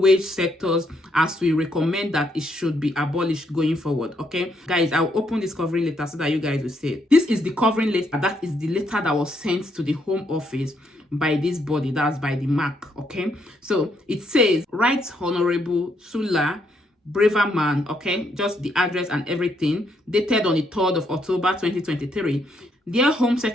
sectors, as we recommend that it should be abolished going forward, okay? Guys, I'll open this covering letter so that you guys will see it. This is the covering letter. That is the letter that was sent to the Home Office by this body, that's by the MAC, okay? So it says, Right Honorable Sula Braverman, okay? Just the address and everything, dated on the 3rd of October 2023. Dear Home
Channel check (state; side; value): normal; both; correlation 0.74